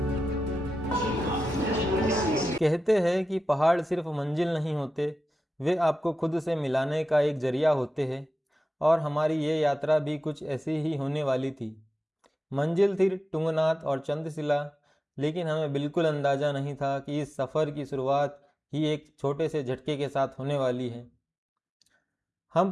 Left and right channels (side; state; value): both; normal; correlation 0.93